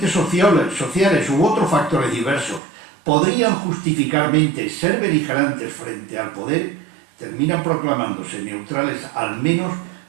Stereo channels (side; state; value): left; drops out; at 2.6 s